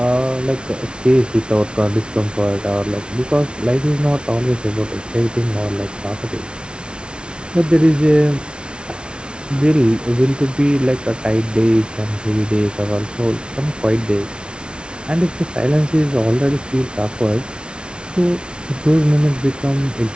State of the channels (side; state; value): left; late; 0.057 ms